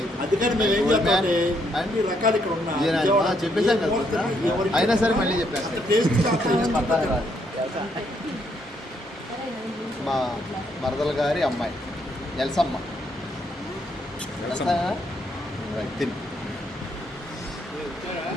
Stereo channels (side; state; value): both; normal; correlation 0.73